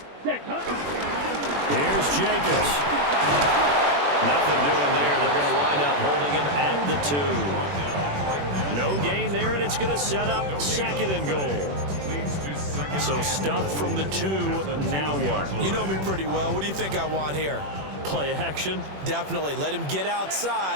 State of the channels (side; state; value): left; late; 21 ms